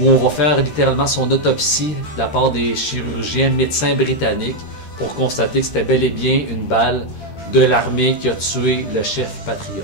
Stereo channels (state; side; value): late; right; 13 ms